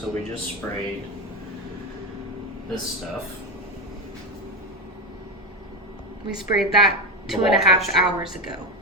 we just sprayed this stuff. We sprayed that The 2.5 wall texture. hours ago.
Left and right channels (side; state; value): both; normal; correlation 0.14